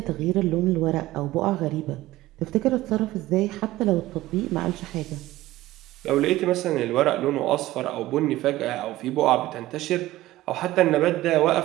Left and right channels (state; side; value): quieter; left; 16.6 dB